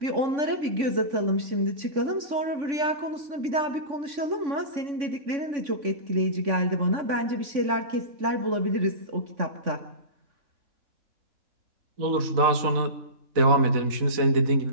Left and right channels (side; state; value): left; late; 3.5 ms